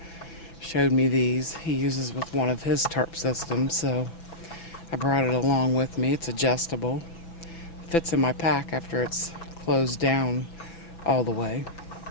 showed me these. He uses with one of his tarp systems, so I brought it along with me. It's adjustable. Fits in my pack after it's closed down all the way.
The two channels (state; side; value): late; right; 5.9 ms